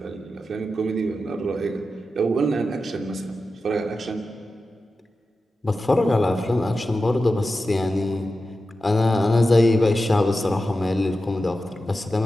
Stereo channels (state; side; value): normal; both; correlation 0.92